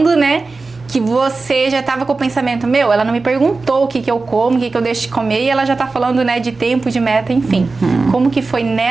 né? Que você já estava com o pensamento, ela não me perguntou o que eu como, o que eu deixo de comer, e ela já tá falando, né, de tempo, de meta, enfim. Como que foi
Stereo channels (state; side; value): quieter; left; 3.8 dB